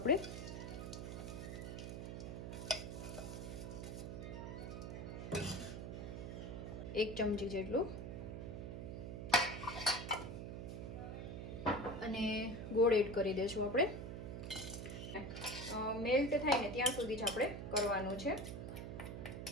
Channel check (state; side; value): noise; right; hum, 6 dB below the sound